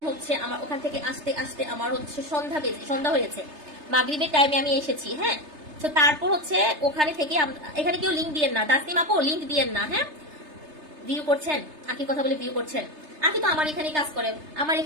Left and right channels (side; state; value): left; late; 3.3 ms